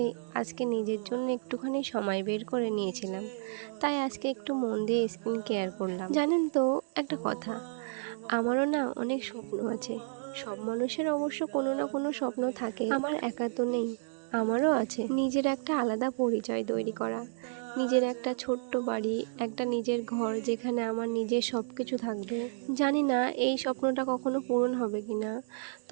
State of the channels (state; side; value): silent; left; digital silence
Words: আজকে নিজের জন্য একটুখানি সময় বের করে নিয়েছিলাম। তাই আজকে একটু মন দিয়ে স্কিন কেয়ার করলাম। জানেন তো একটা কথা, আমারও না অনেক স্বপ্ন আছে। সব মানুষের অবশ্য কোনো না কোনো স্বপ্ন থাকে, আমার একা তো নেই। আমারও আছে নিজের একটা আলাদা পরিচয় তৈরি করা, নিজের একটা ছোট্ট বাড়ি, একটা নিজের ঘর যেখানে আমার নিজের সব কিছু থাকবে। জানি না এই স্বপ্নটা কখনো পূরণ হবে কিনা,